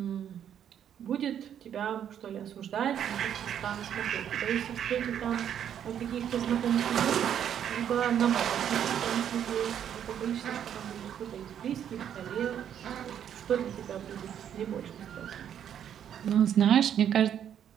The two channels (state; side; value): quieter; left; 9.4 dB